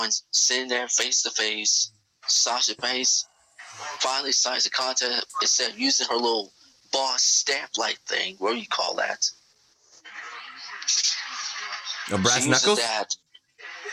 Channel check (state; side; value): identical; both; correlation 1.00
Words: sitting there face to face. Sasha Banks finally signs the contract instead of using her little boss stamp-like thing. What do you call that? A brass she knuckles? Uses that.